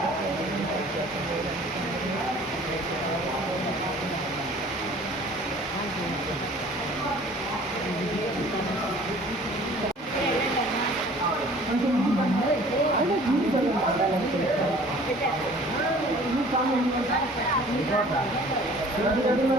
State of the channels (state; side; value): normal; both; correlation 0.50